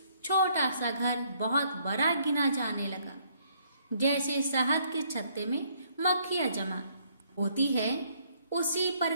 छोटा सा घर बहुत बड़ा गिना जाने लगा। जैसे शहद के छत्ते में मक्खियां जमा होती है, उसी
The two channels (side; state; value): both; inverted; correlation -0.66